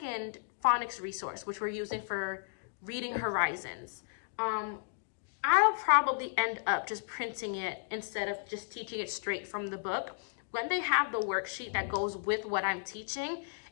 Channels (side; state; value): right; silent; digital silence